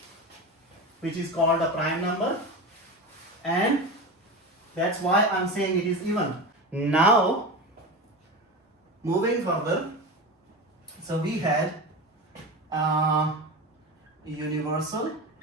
which is called a prime number, and that's why I'm saying it is even. Now moving further, so we had universal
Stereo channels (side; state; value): both; normal; correlation 0.25